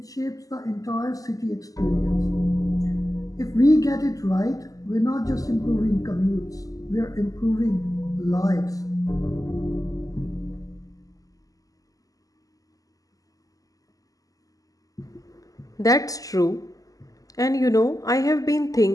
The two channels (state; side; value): late; right; 0.17 ms